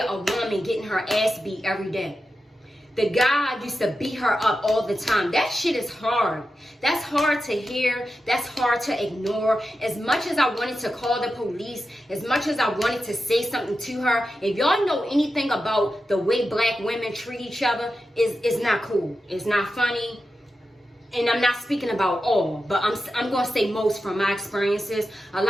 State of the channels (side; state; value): both; normal; correlation 0.90